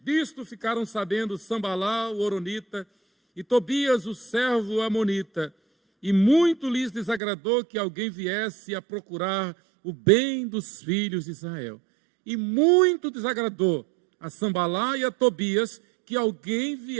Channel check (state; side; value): drops out; left; at 7.2 s